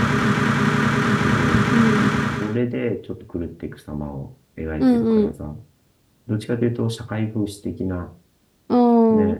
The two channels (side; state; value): both; identical; correlation 1.00